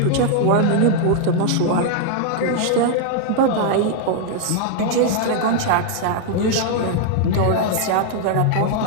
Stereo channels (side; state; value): both; different; correlation -0.01